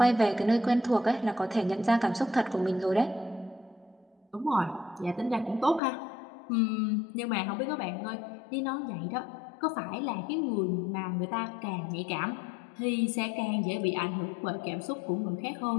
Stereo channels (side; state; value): right; drops out; at 5.8 s